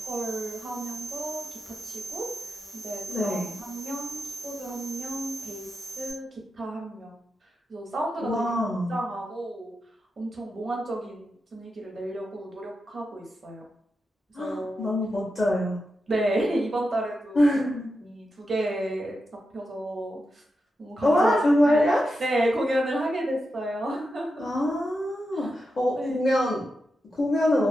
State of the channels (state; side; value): normal; both; correlation 0.88